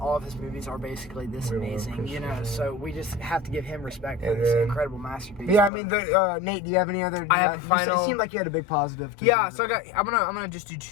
of his movies are basically this amazing, so we just have to give him respect for this incredible masterpiece. Nate, do you have any other? I have final. It seemed like you had a big positive. So I'm gonna just do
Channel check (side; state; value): right; drops out; at 5.7 s